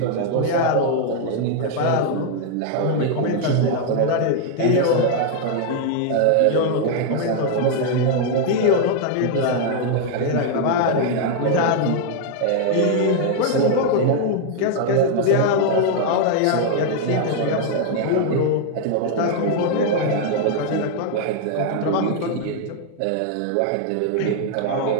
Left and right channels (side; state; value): both; different; correlation 0.00